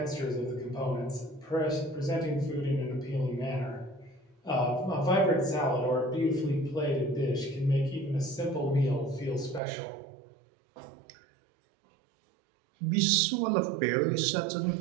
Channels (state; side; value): drops out; left; at 9.6 s